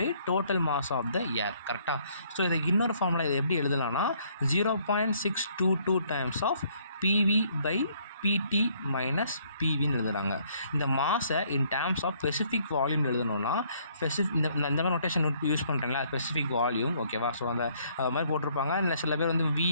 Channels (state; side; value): inverted; both; correlation -0.65